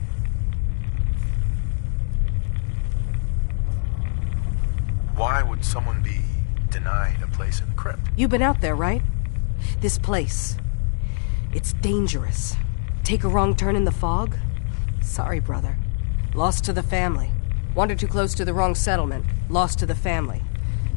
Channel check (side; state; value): right; silent; digital silence